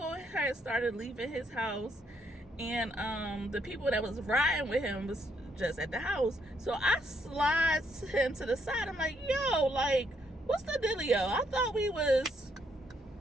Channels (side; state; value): both; normal; correlation 0.74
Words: had started leaving his house, and the people that was riding with him was just at the house. So I slide him to the side. I'm like, yo, like, what's the dealio? I thought we was.